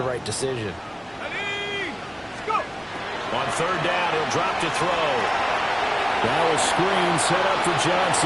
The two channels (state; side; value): identical; both; correlation 1.00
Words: right decision. On third down, he'll drop to throw. Now a screen set up for